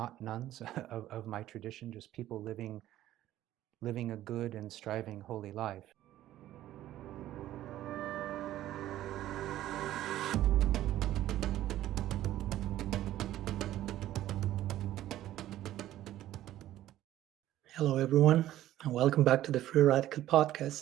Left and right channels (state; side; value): quieter; left; 13.6 dB